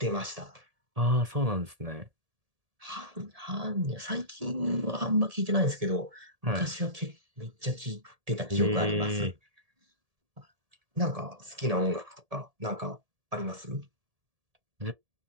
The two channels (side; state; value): left; late; 1.7 ms